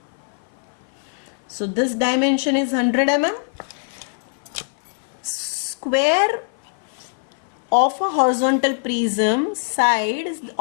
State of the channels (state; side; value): silent; right; 57 dB below the other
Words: So this dimension is 100 mm. Square of a horizontal prism, side